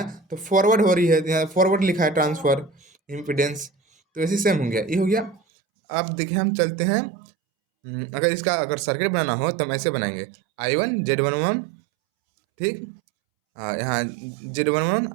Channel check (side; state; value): left; drops out; at 5.4 s